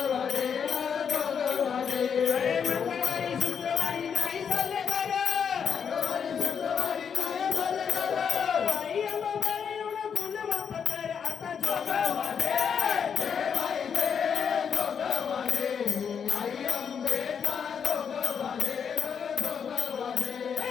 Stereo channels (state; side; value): quieter; right; 7.2 dB